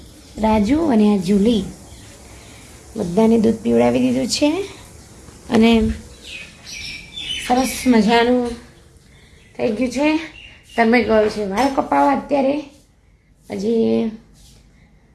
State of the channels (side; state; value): both; identical; correlation 1.00